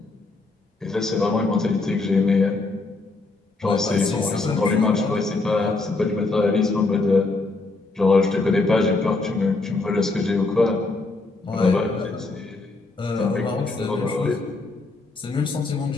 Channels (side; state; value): right; quieter; 3.4 dB